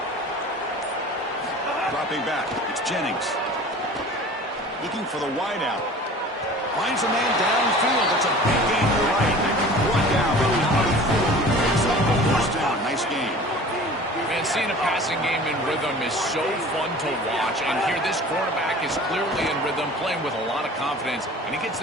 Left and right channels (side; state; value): both; normal; correlation 0.42